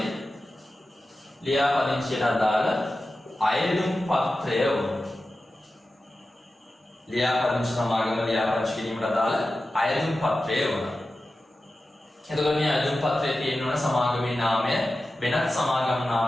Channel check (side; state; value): both; normal; correlation 0.94